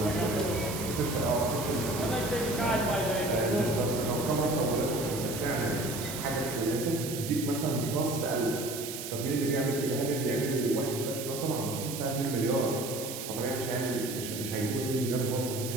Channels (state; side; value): noise; right; hiss, 8 dB below the sound